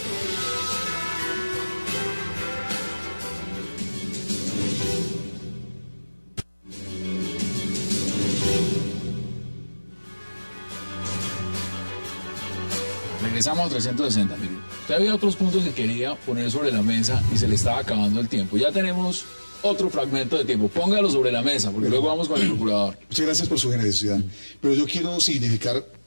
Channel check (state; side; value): inverted; both; correlation -1.00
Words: Regresamos a 360. Mire, usted había otros puntos que quería poner sobre la mesa y se le estaba acabando el tiempo. Ya tenemos otro fragmento de tiempo. Póngalo sobre la mesa, porque luego vamos con el procurador. Muchas gracias por su generosidad. Pero yo quiero significar,